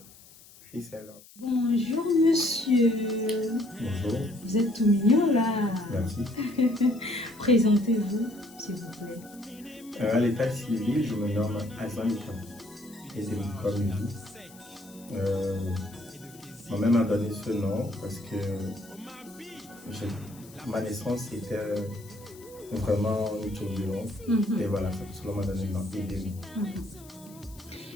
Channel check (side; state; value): left; noise; hiss, 22 dB below the sound